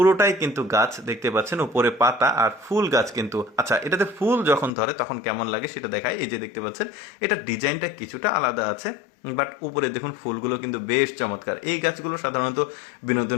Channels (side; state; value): right; drops out; at 4.7 s